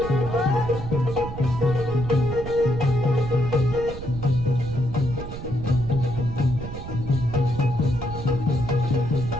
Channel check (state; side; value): noise; right; rumble, 9 dB below the sound